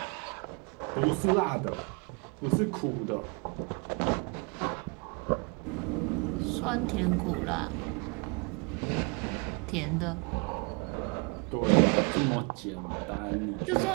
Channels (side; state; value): left; quieter; 32.9 dB